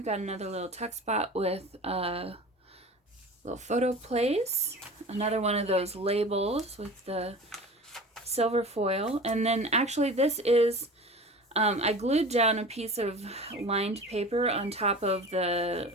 got another little tuck spot with a little photo place. Another one of those labels with the silver foil. And then actually this is, I glued down a piece of lined paper on top of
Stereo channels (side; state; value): both; normal; correlation 0.36